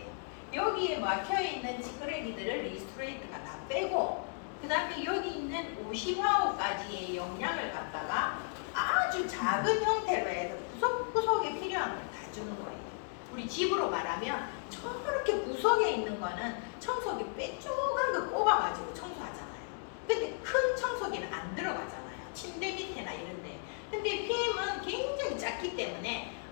여기에 막혀있는 찌끄레기들을 리스토레이트가 다 빼고 그 다음에 여기 있는 오시화호까지의 영양을 갖다가 아주 작은 형태로 해서 구석구석에 필요한 걸 다 주는 거예요. 우리 집으로 말하면 저렇게 구석에 있는 거는 청소기 빼쪽한 거 꼽아가지고 청소하잖아요. 근데 큰 청소기는 안 들어가잖아요. 침대 밑에나 이런데. 근데 PM은 굉장히 작기 때문에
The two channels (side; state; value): right; silent; 55 dB below the other